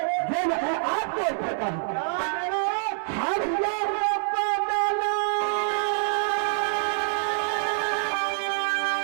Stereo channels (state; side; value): silent; left; digital silence